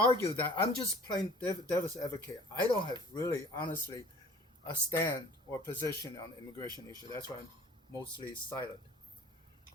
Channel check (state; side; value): normal; both; correlation 0.50